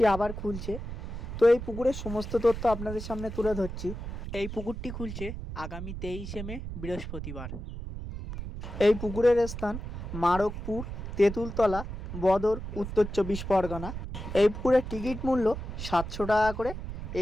আবার খুলছে। তো এই পুকুরের সমস্ত তথ্য আপনাদের সামনে তুলে ধরছি। এই পুকুরটি খুলছে আগামী 23শে মে বৃহস্পতিবার। এই পুকুরের স্থান মারকপুর, তেঁতুলতলা, বদর, উত্তর 24 পরগনা। এই পুকুরের টিকিট মূল্য 700 টাকা করে।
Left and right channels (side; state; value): right; noise; rumble, 7 dB below the sound